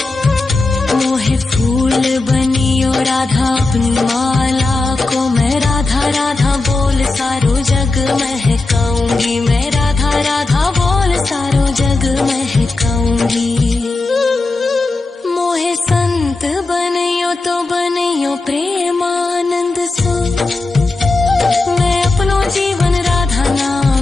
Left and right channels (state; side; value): quieter; right; 3.4 dB